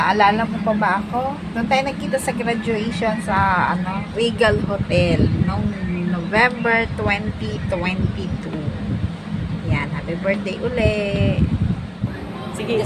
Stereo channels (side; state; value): both; identical; correlation 1.00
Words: mo pa ba ako? Doon tayo nagkita sa graduation sa Regal Hotel noong November 2022. Yan, happy birthday uli! Sige,